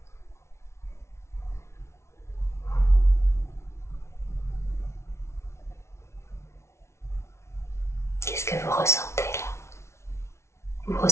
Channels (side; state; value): right; late; 0.13 ms